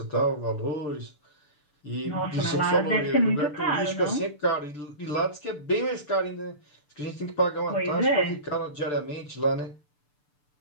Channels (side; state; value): right; late; 6.8 ms